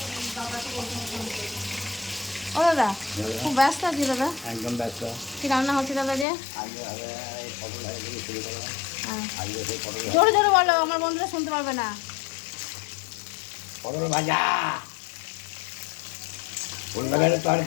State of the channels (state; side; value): drops out; right; at 6.2 s